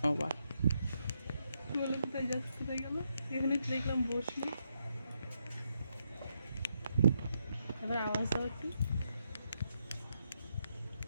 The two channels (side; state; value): both; inverted; correlation -0.81